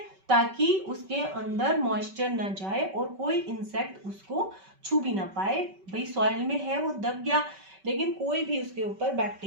ताकि उसके अंदर मॉइस्चर ना जाए और कोई इंसेक्ट उसको छू भी ना पाए। भाई सॉइल में है वो दब गया, लेकिन कोई भी उसके ऊपर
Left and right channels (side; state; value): left; late; 5.2 ms